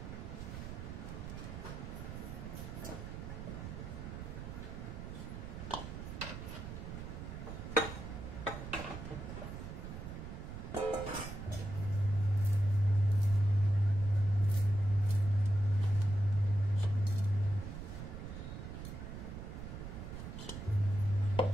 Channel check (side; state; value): right; noise; rumble, 8 dB below the sound